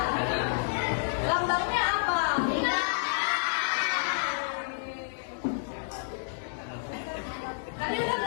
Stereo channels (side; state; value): right; silent; digital silence